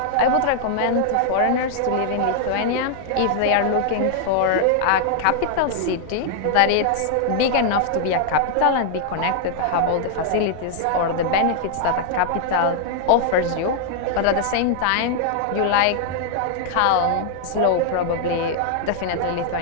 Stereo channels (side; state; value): both; different; correlation -0.01